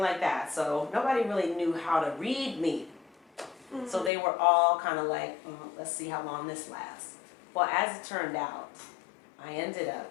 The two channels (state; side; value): drops out; right; at 4.1 s